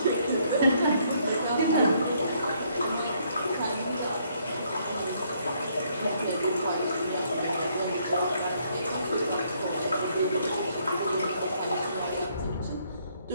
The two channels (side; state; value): both; inverted; correlation -0.69